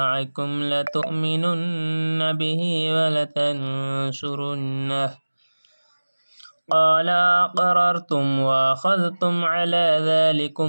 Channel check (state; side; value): inverted; both; correlation -1.00